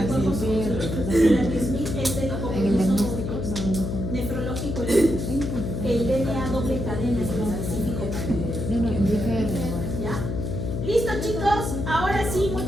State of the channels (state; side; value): noise; left; hum, 3 dB below the sound